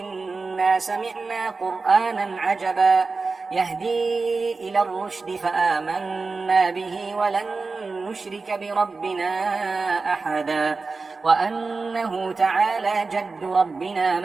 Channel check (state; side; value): quieter; left; 4.1 dB